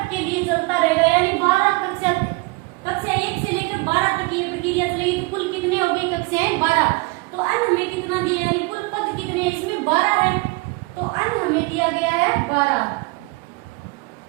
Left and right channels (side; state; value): left; quieter; 25.9 dB